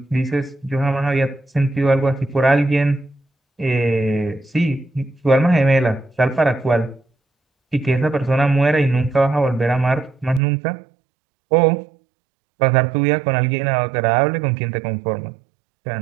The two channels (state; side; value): drops out; left; at 10.4 s